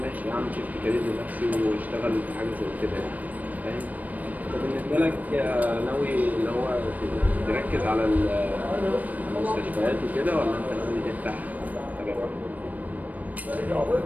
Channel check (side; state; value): left; late; 0.077 ms